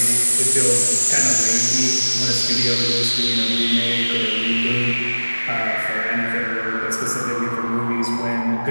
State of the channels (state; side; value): inverted; both; correlation -1.00